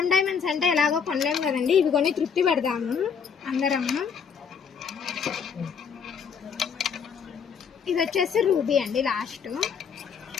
డైమండ్స్ అంటే ఎలాగో కొనలేము కదండి, ఇవి కొని తృప్తి పెడదాము అందరము. ఇది వచ్చేసి రూబీ అండి లాస్ట్.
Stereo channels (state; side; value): quieter; right; 6.6 dB